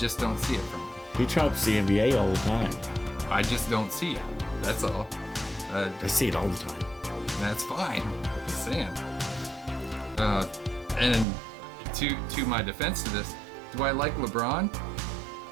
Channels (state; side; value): drops out; left; at 11.2 s